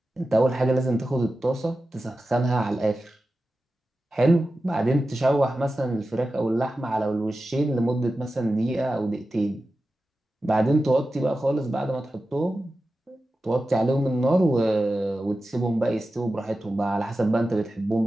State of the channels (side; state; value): both; normal; correlation 0.93